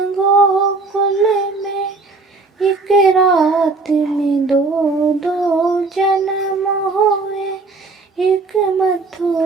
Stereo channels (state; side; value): quieter; left; 3.8 dB